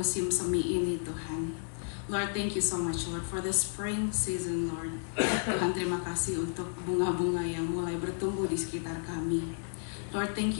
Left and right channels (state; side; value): silent; right; 56 dB below the other